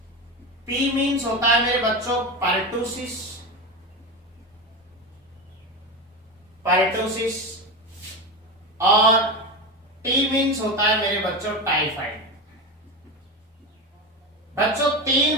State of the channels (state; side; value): normal; both; correlation 0.19